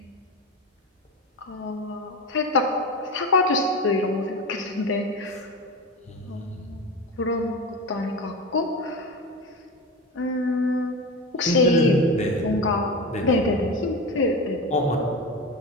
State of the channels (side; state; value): both; normal; correlation 0.24